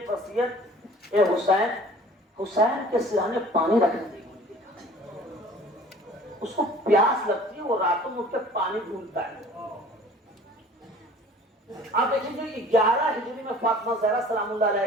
وصیت اے حسین، حسین کے سرانے پانی رکھنے دیجیے. اس کو پیاس لگتی ہے، وہ راتوں میں اٹھ کے پانی ڈھونڈتا ہے. آپ دیکھیں گے 11 ہجری میں فاطمہ زہرا سلام اللہ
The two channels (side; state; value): both; normal; correlation 0.48